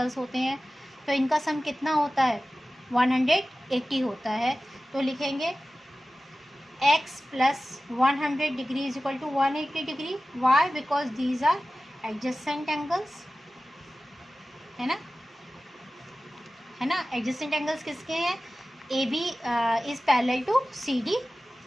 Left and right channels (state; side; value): normal; both; correlation 0.96